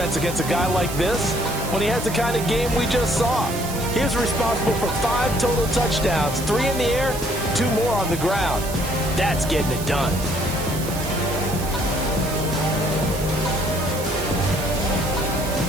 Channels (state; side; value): noise; right; hiss, 10 dB below the sound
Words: against a guy like this when he has the kind of game we just saw. He was responsible for 5 total touchdowns, 3 in the air, 2 more on the ground. That's getting it done.